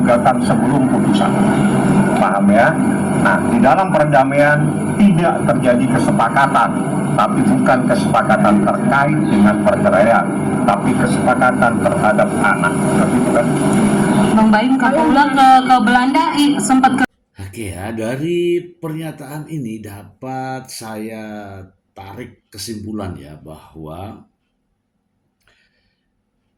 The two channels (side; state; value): both; identical; correlation 1.00